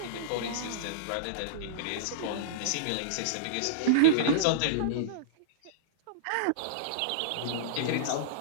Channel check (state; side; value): different; both; correlation -0.03